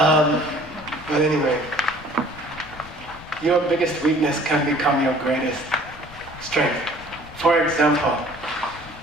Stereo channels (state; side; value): noise; left; rumble, 19 dB below the sound